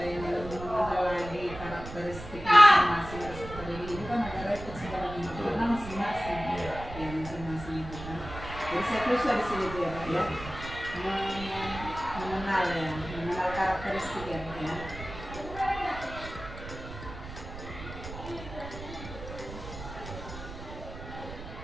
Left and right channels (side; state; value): right; noise; rumble, 11 dB below the sound